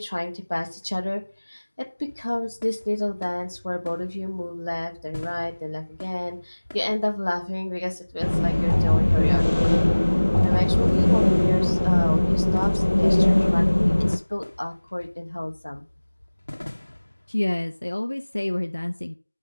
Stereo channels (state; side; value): inverted; both; correlation -1.00